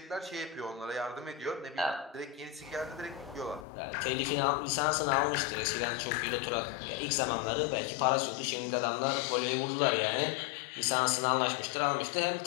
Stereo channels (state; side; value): drops out; right; at 3.7 s